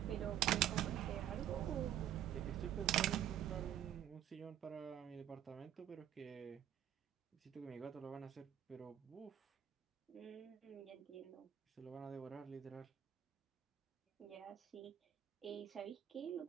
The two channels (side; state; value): left; quieter; 10.7 dB